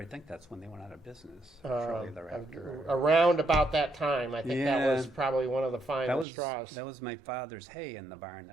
think that's when they went out of business. Shortly thereafter. Around about that time, I think that Yeah. was probably one of the final straws. That was my father's hay in the barn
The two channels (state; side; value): drops out; left; at 6.2 s